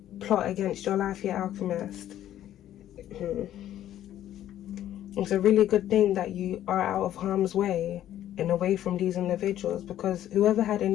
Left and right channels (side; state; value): right; quieter; 12.1 dB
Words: plot against your life here, alchemist, it's a really good thing that you are out of harm's way and away from these individuals, because whoever had